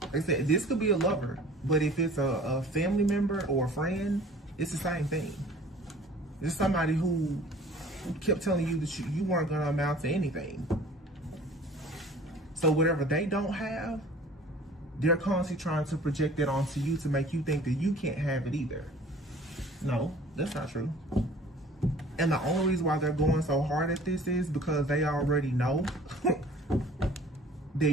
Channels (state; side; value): normal; both; correlation 0.48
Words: Like I said, this could be a lover, but if it's a family member or a friend, it's the same thing. It's somebody who kept telling you that you weren't going to amount to anything. So whatever they don't have, They're constantly trying to project it onto you to make you think that you can't have it either. No, that's not true. And the only reason why they're going so hard at this is because they already know that